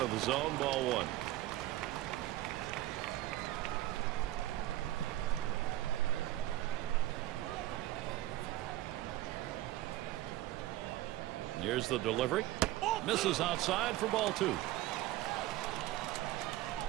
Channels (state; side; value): quieter; left; 15.5 dB